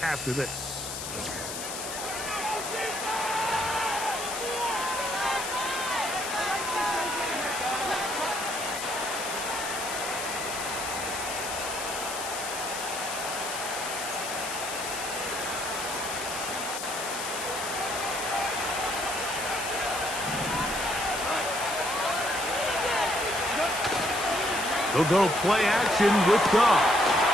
after this. They'll go play action with Goff.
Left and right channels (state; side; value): noise; left; hiss, 6 dB below the sound